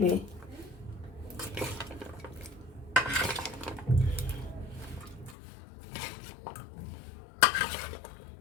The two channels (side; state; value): right; drops out; at 5.4 s